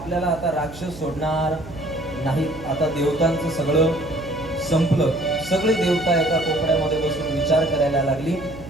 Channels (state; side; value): noise; right; hum, 15 dB below the sound